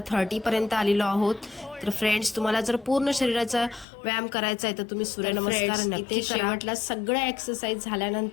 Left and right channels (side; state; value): right; drops out; at 3.9 s